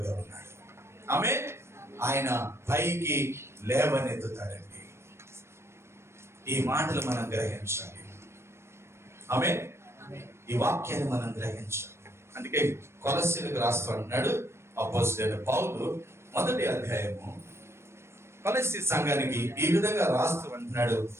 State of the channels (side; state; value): left; late; 0.13 ms